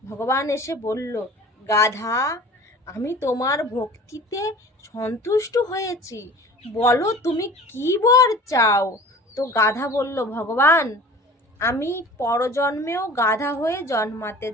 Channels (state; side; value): normal; both; correlation 0.42